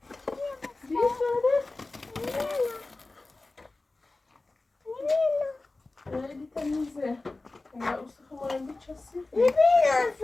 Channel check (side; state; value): right; quieter; 3.3 dB